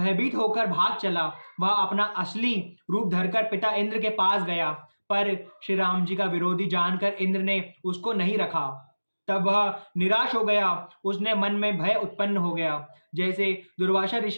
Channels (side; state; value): both; inverted; correlation -1.00